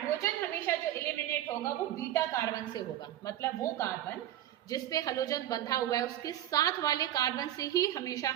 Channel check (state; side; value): quieter; left; 12.6 dB